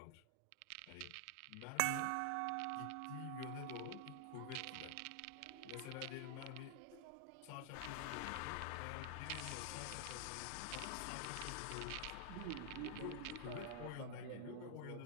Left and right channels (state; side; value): different; both; correlation 0.00